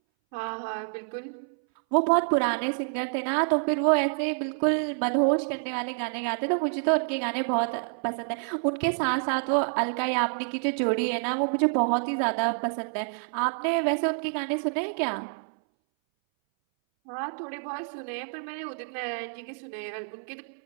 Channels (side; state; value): left; silent; 60 dB below the other